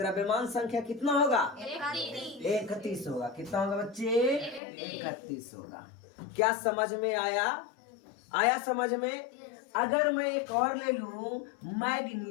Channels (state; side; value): drops out; right; at 4.6 s